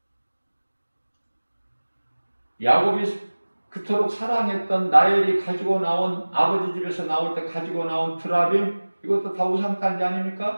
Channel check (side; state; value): both; inverted; correlation -1.00